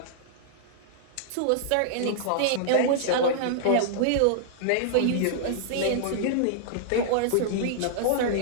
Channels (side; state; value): both; different; correlation -0.01